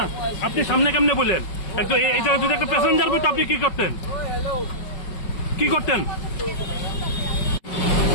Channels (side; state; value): right; late; 5.4 ms